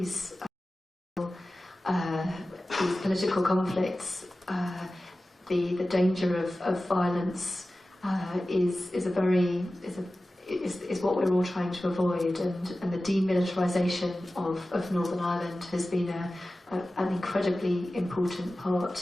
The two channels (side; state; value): both; normal; correlation 0.95